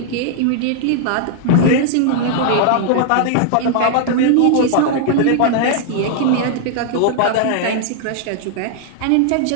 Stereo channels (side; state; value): both; different; correlation -0.01